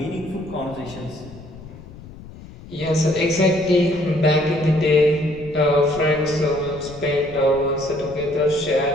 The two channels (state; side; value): noise; left; rumble, 17 dB below the sound